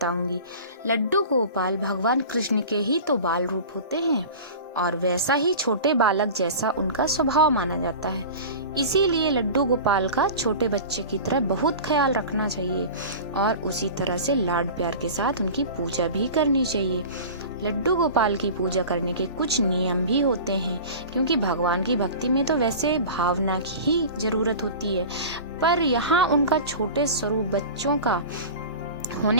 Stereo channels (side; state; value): both; inverted; correlation -0.36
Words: लड्डू गोपाल भगवान कृष्ण के ही तो बाल रूप होते हैं और वैसा ही छोटे बालक जैसा उनका स्वभाव माना जाता है। इसीलिए लड्डू गोपाल का छोटे बच्चे की तरह बहुत ख्याल रखना चाहिए और उसी तरह से लाड प्यार के साथ उनकी पूजा भी करनी चाहिए। लड्डू गोपाल की पूजा करने के कुछ नियम भी होते हैं, क्योंकि भगवान की भक्ति में तो वैसे भावना की ही जरूरत होती है, पर यहाँ उनका छोटे स्वरूप बच्चों का